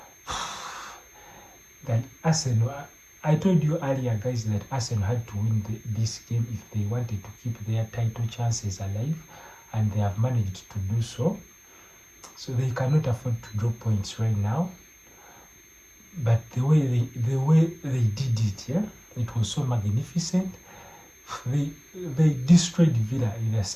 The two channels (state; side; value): identical; both; correlation 1.00